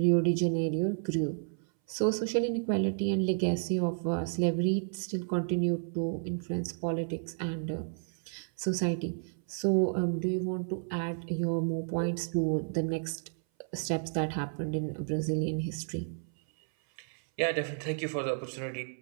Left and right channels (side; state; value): left; silent; 57 dB below the other